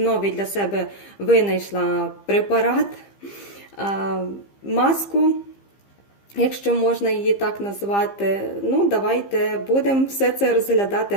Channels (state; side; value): late; right; 15 ms